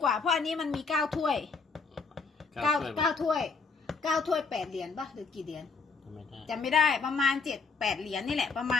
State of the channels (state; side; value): quieter; right; 4.7 dB